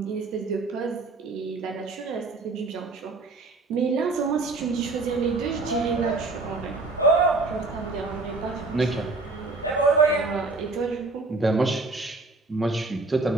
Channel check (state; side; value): quieter; left; 3.6 dB